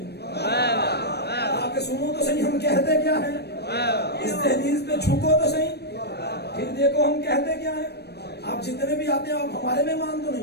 आके सुनो तो सही हम कहते क्या है, इस तहरीर पे झुको तो सही, फिर देखो हम कहते क्या है। आप जितने भी आते हैं आप हमारे मेहमान तो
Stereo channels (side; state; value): right; late; 0.48 ms